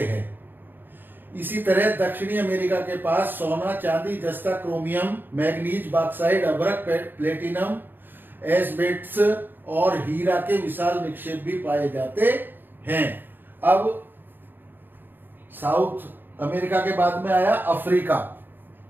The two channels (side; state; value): left; late; 0.093 ms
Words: है। इसी तरह दक्षिणी अमेरिका के पास सोना, चांदी, जस्ता, क्रोमियम, मैग्नीज, बॉक्साइट, अभ्रक, प्लेटिनम, एस्बेस्टस और हीरा के विशाल निक्षेप भी पाए जाते हैं। अब साउथ अमेरिका के बाद में आया अफ्रीका।